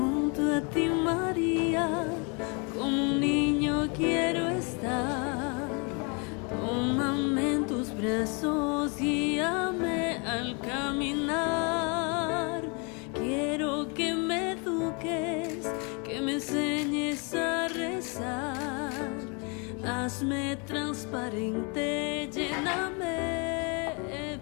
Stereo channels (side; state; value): right; quieter; 33.4 dB